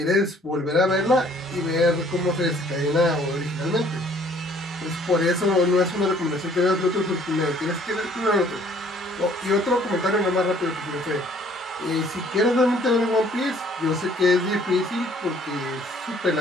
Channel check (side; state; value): both; normal; correlation 0.59